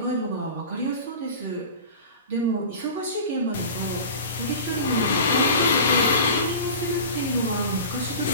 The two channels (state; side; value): inverted; both; correlation -0.36